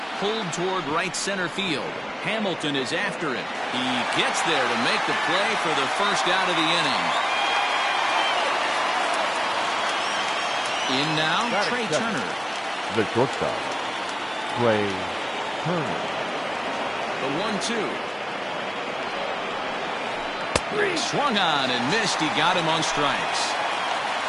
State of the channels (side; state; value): both; identical; correlation 1.00